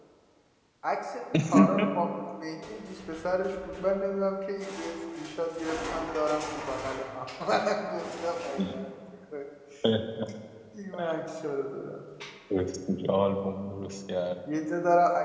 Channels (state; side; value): identical; both; correlation 1.00